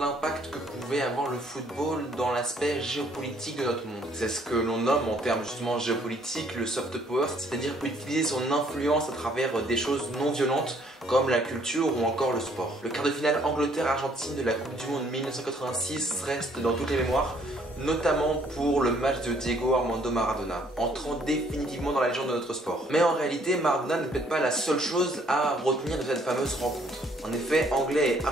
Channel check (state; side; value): normal; both; correlation 0.64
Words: que pouvait avoir le football dans l'aspect géopolitique de notre monde. C'est ce que l'on nomme en termes justement géopolitiques le soft power, c'est-à-dire utiliser son influence à travers des choses non violentes comme la culture ou encore le sport. Le quart de finale Angleterre-Argentine de la Coupe du Monde 1986 reste dans toutes les mémoires, notamment pour le match de Diego Armando Maradona, entrant définitivement dans la légende de notre sport. Mais en réalité, Maradona n'est peut-être pas la seule chose à retenir de cette fameuse rencontre. En effet, Anglais et